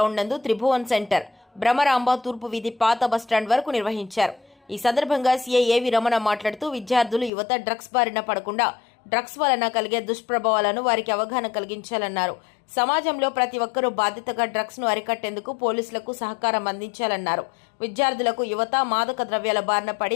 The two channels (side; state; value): right; drops out; at 7.3 s